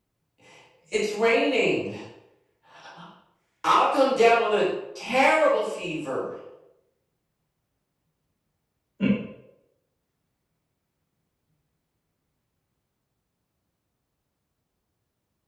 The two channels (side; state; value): both; identical; correlation 1.00